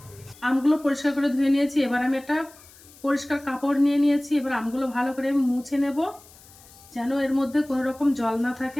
আমগুলো পরিষ্কার করে ধুয়ে নিয়েছি। এবার আমি একটা পরিষ্কার কাপড় নিয়ে নিয়েছি। এবার আমগুলো ভালো করে আমি মুছে নেব, যেন এর মধ্যে কোনো রকম জল না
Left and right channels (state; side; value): noise; left; hiss, 23 dB below the sound